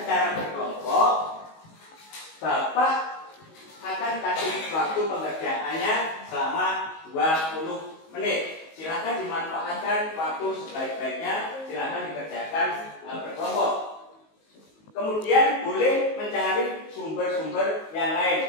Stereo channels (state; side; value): late; right; 19 ms